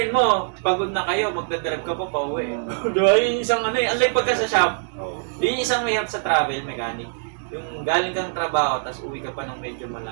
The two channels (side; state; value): left; silent; digital silence